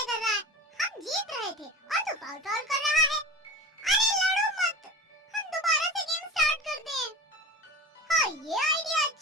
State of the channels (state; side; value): normal; both; correlation 0.33